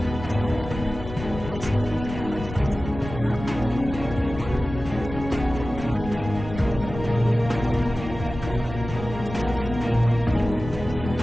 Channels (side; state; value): left; noise; rumble, 10 dB below the sound